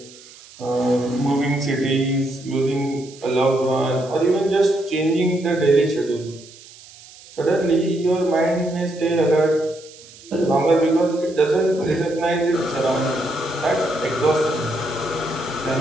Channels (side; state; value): right; noise; hiss, 21 dB below the sound